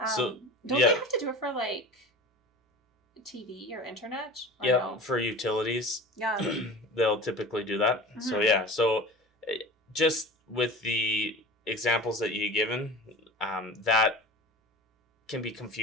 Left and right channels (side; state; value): both; normal; correlation 0.36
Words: So don't they have to do it for TV or internet? Or yeah, no? for utilities. Yeah. They'll typically do that. Mm-hmm. So yeah, just with the examples that you've given, that can be